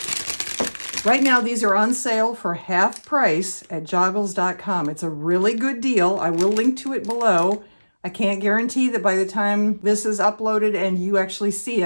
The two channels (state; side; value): inverted; both; correlation -1.00